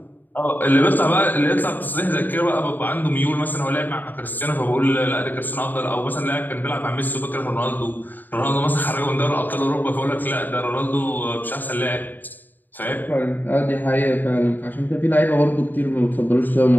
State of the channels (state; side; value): late; right; 0.088 ms